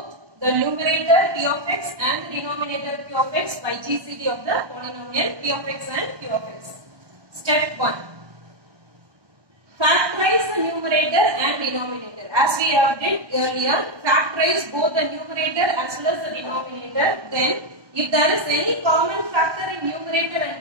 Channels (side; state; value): left; late; 1.1 ms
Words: the numerator P of x and the denominator Q of x by GCD of the polynomial P of x and Q of x. Step 1. Factorize the numerator and denominator. As we have did earlier, factorize both the numerator as well as the denominator. Then, if there is any common factor in numerator